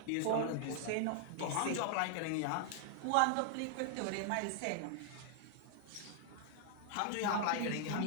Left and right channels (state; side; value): different; both; correlation 0.00